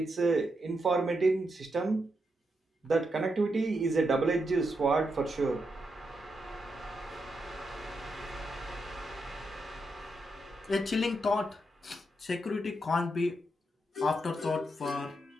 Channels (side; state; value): both; normal; correlation 0.83